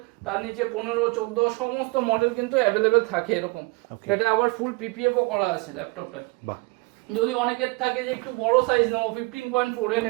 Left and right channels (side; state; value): left; quieter; 26.8 dB